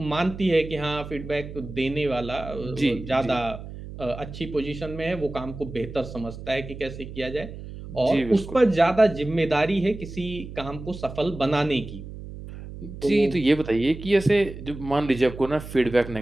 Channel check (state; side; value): noise; right; hum, 12 dB below the sound